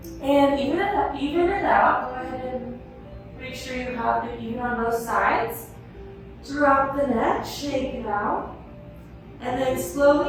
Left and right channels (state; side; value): identical; both; correlation 1.00